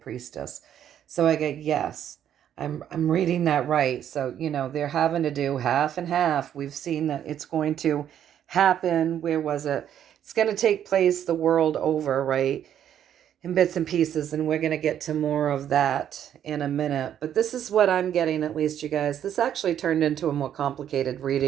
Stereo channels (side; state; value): left; quieter; 10.0 dB